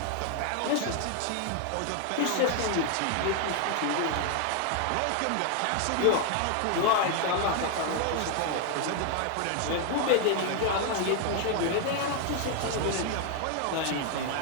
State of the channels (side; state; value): both; different; correlation 0.00